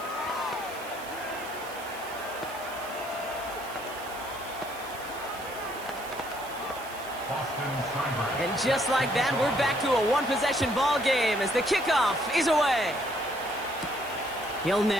And just like that, we're back to a one-possession ball game as the kickoff is away. Hill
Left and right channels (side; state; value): right; noise; hiss, 16 dB below the sound